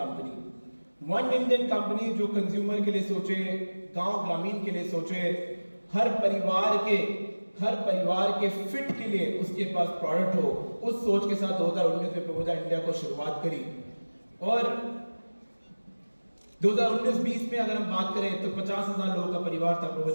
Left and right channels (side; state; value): both; inverted; correlation -1.00